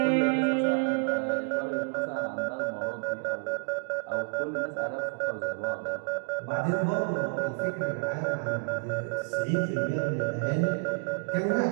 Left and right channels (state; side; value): silent; left; digital silence